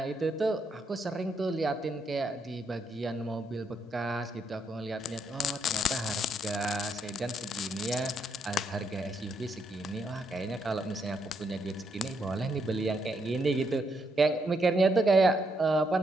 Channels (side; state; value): both; normal; correlation 0.76